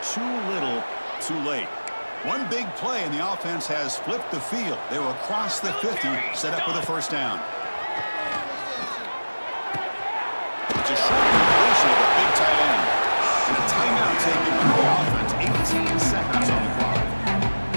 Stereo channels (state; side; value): inverted; both; correlation -1.00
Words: too little, too late. One big play and the offense has flipped the field. They're across the 50, set up with a first down. It's a short completion of the big tight end. And a timeout taken by the offense. 18 seconds on the clock.